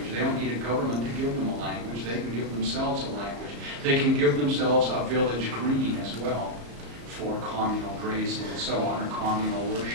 They don't need a government to give them a language. They can give themselves a language. They can give themselves a village green as well for communal grazing and so on, or communal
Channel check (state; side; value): late; left; 35 ms